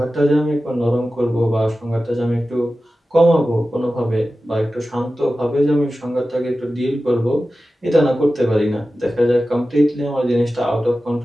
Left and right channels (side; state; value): both; normal; correlation 0.94